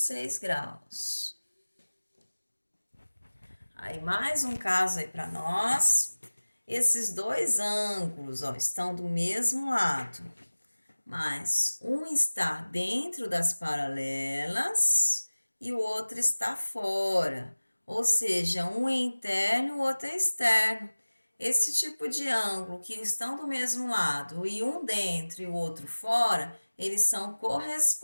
graus. Aí, mais um caso aí para nós. Esses dois ângulos, ó, estão do mesmo lado, mas um está dentro das paralelas e o outro está fora. Ou seja, um é interno e o outro é externo. Esse tipo de ângulo que estão do mesmo lado e um dentro e o outro fora, eles são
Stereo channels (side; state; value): both; inverted; correlation -1.00